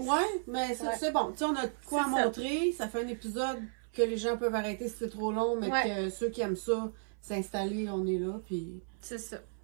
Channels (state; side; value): silent; left; 55 dB below the other